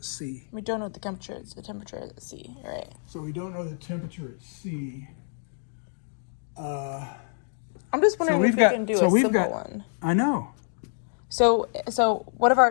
C. We don't know what the temperature is. The temperature is at C, right? So we don't know the temperature at C. I'm just wondering if we can do a simple one. I know. So what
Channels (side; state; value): right; silent; digital silence